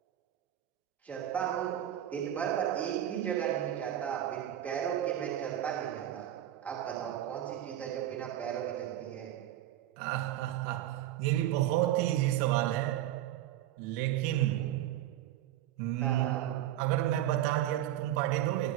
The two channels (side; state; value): left; quieter; 12.5 dB